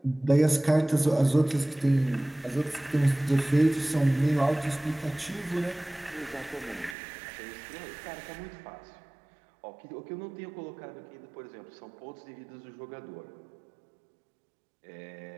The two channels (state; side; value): drops out; left; at 7.0 s